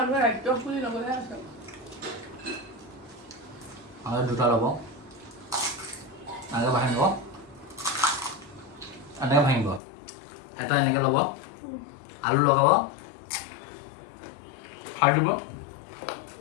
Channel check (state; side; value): drops out; right; at 9.8 s